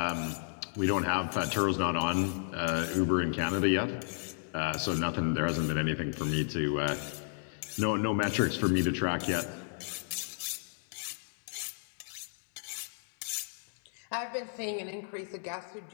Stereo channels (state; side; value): silent; right; digital silence